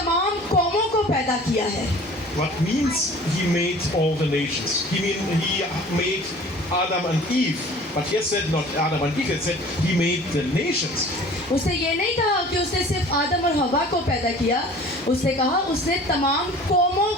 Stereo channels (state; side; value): normal; both; correlation 0.46